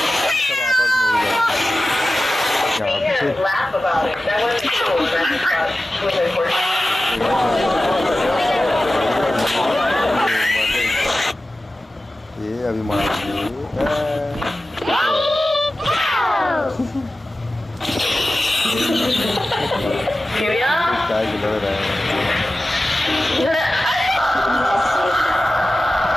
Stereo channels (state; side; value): normal; both; correlation 0.95